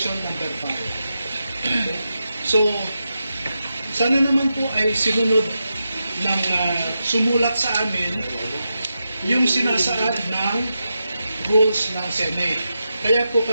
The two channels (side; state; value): both; inverted; correlation -0.88